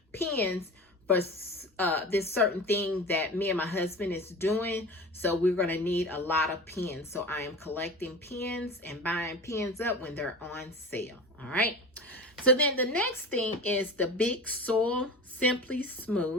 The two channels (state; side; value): normal; both; correlation 0.33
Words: pens for this certain thing that me and my husband is doing. So we're going to need a lot of pens. So I am collecting pens and buying pens up when they're on sale. All right. So then the next thing is the Big Soil Simply